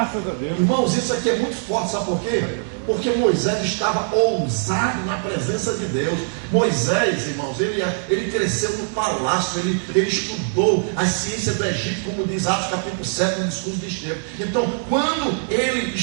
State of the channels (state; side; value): silent; left; digital silence